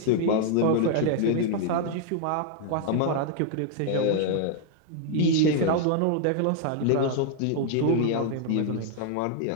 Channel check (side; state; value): both; different; correlation 0.00